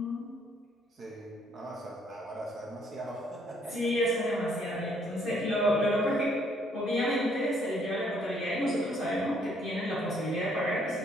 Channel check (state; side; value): normal; both; correlation 0.66